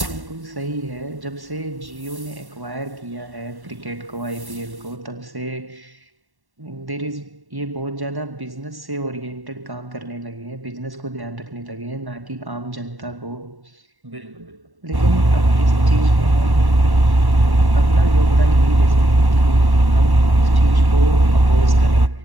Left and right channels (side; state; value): left; late; 1.1 ms